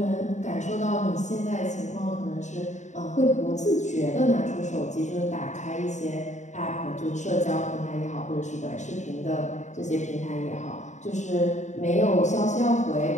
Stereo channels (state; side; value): late; right; 0.34 ms